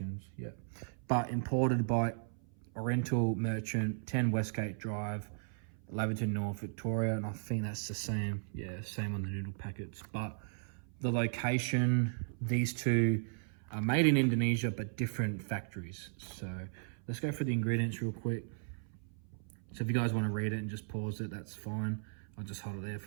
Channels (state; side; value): silent; left; 54 dB below the other